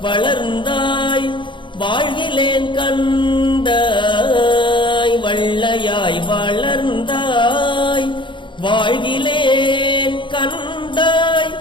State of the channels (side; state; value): right; late; 0.23 ms